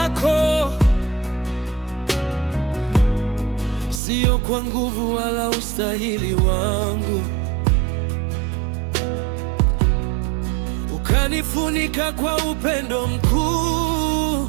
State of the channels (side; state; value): left; drops out; at 4.0 s